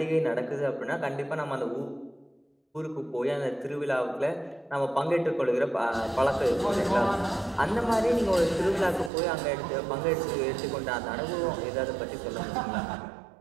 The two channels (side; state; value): left; drops out; at 9.1 s